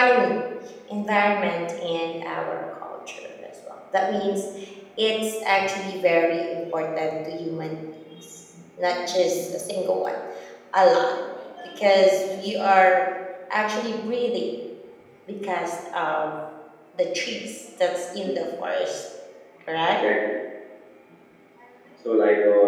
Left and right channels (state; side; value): identical; both; correlation 1.00